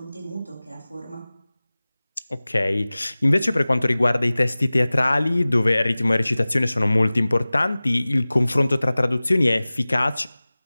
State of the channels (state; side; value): inverted; both; correlation -0.99